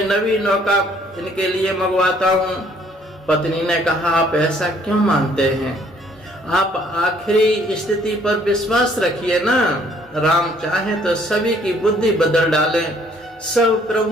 नवी नौका इनके लिए मंगवाता हूँ। पत्नी ने कहा, आप ऐसा क्यों मानते हैं, आप आखिरी स्थिति पर विश्वास रखिए ना। राम चाहे तो सभी की बुद्धि बदल डालें, सब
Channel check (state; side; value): normal; both; correlation 0.62